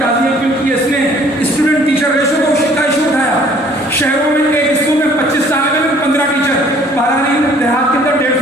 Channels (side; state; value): both; normal; correlation 0.57